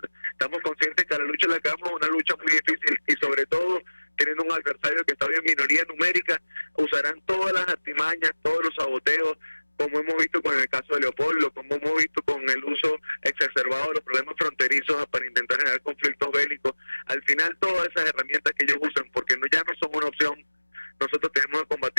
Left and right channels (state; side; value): inverted; both; correlation -1.00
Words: Estamos conscientes que la lucha en la cama es una lucha muy difícil, y sobre todo teniendo un adversario que está en minoría numérica, usarán todas las artimañas, todos los saboteos, como hemos visto con el caso de Leopoldo, como hemos visto con el uso exacerbado de los problemas fronterizos para intentar generar conflictos bélicos. Al final, todas esas herramientas que ellos usan, porque ya no son una opción, nosotros tenemos que